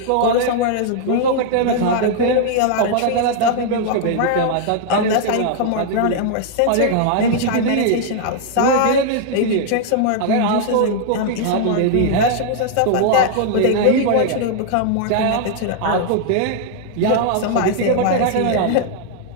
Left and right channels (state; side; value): different; both; correlation 0.00